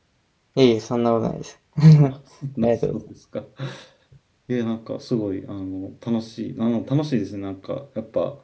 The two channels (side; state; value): both; identical; correlation 1.00